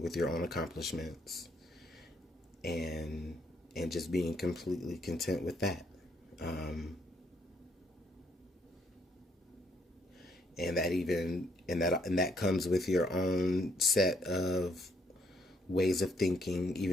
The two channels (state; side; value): normal; both; correlation 0.70